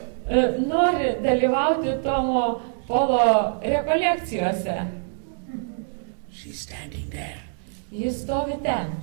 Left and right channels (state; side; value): silent; left; 62 dB below the other